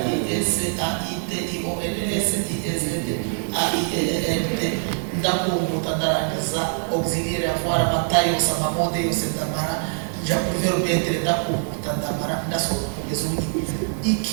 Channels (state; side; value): silent; left; 63 dB below the other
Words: AIT IONS ISD AIENT ndakumbuta ndarangiza auxiliaire avoir amatayo samamode yose ndamara ja pour verbe être ndakumbuta ndamara ndasohoka kugeza ubu